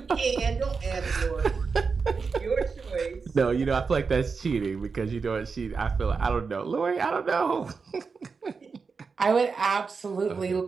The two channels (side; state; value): left; quieter; 5.0 dB